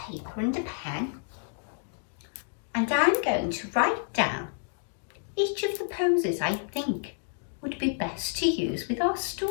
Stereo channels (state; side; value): silent; right; 58 dB below the other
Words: and a pen, and I'm going to write down each of the poses I think would be best to use with our